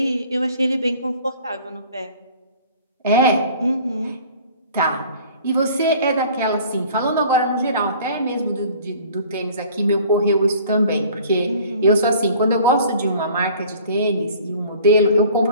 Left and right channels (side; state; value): both; inverted; correlation -0.49